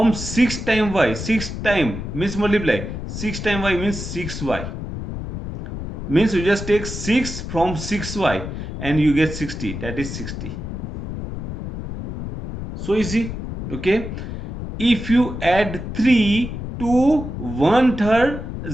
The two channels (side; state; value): left; noise; rumble, 7 dB below the sound